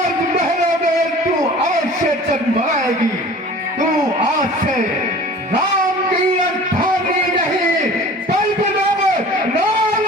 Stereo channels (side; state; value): both; normal; correlation 0.43